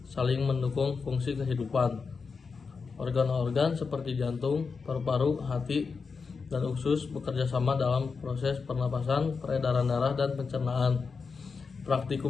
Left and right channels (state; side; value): quieter; right; 5.1 dB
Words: saling mendukung fungsi kehidupan. Organ-organ seperti jantung, paru-paru, hati, dan usus bekerja sama dalam proses pernapasan, peredaran darah, dan pencernaan.